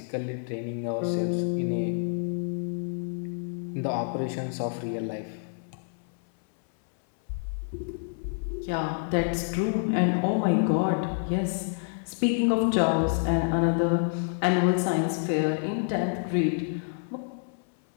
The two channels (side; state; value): right; silent; 59 dB below the other